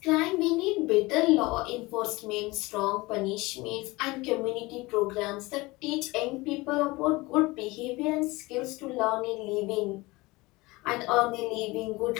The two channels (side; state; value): right; quieter; 22.2 dB